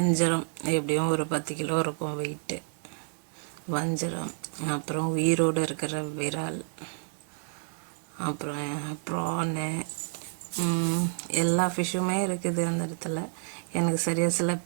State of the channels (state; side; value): silent; left; 58 dB below the other